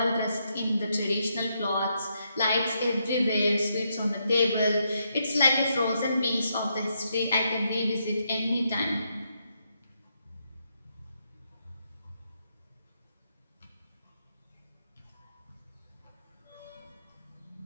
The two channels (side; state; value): both; inverted; correlation -0.79